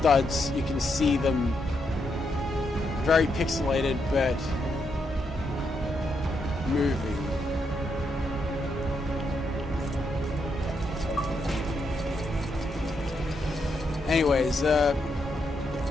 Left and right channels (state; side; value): normal; both; correlation 0.80